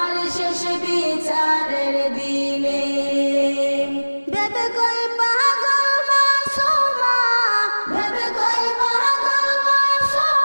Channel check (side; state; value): both; inverted; correlation -1.00